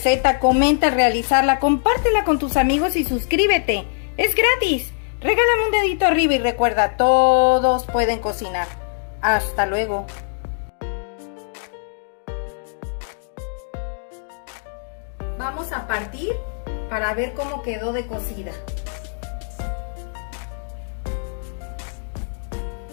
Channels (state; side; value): silent; right; digital silence